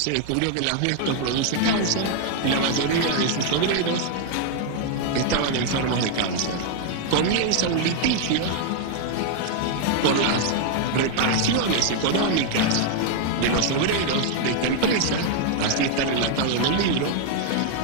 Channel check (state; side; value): different; both; correlation 0.00